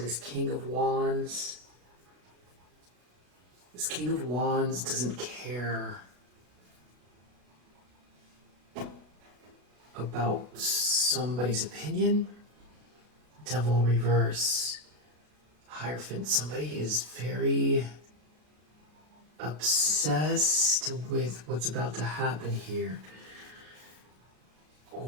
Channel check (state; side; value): late; left; 33 ms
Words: King of Wands. This King of Wands doesn't care about somebody's opinion. Devil reverse. Hierophant. Somebody is very obsessed with what's about to happen here.